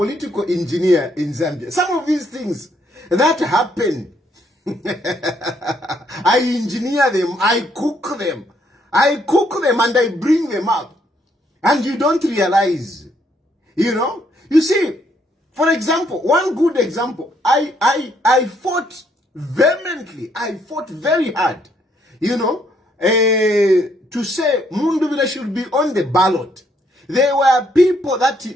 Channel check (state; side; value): normal; both; correlation 0.71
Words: engineer in Zambia. Some of these things that happen, I engineer them, I cook them and I bring them up. And you don't realize, you know. You see, for example, one good example, I fought vehemently, I fought very hard, you know, to say Mundubile should be on the ballot. There were people that